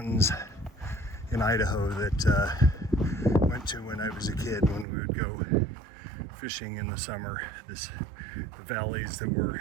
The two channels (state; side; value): drops out; left; at 4.9 s